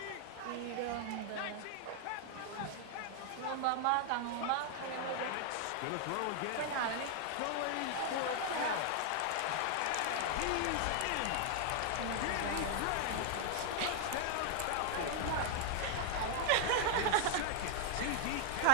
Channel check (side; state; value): both; different; correlation 0.00